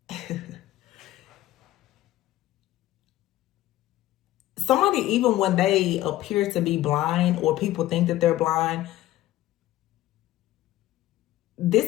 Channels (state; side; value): quieter; right; 15.0 dB